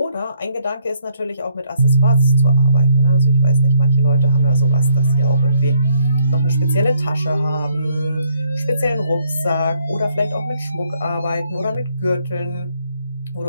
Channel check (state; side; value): inverted; both; correlation -0.69